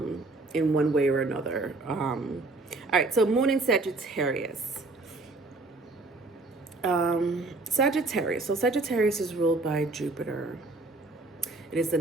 one way or another. All right, so Moon in Sagittarius. Sagittarius. So Sagittarius is ruled by Jupiter. It is the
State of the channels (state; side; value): quieter; left; 3.2 dB